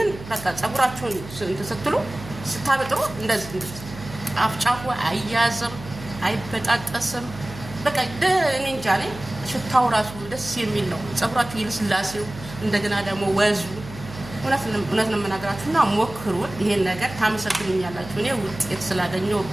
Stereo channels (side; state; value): right; noise; hum, 14 dB below the sound